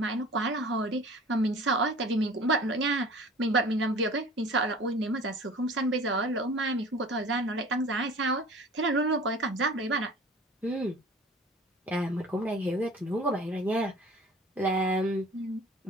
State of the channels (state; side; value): normal; both; correlation 0.44